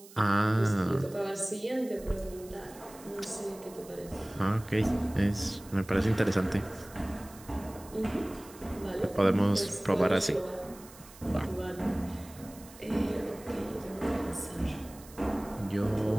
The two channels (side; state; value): right; noise; hiss, 20 dB below the sound